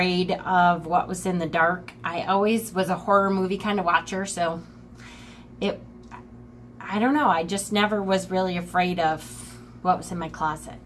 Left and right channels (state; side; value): identical; both; correlation 1.00